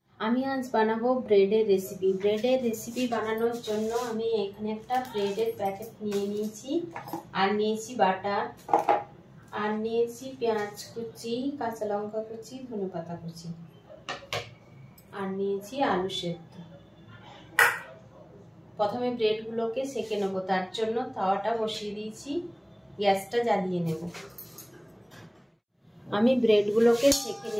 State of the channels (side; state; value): both; identical; correlation 1.00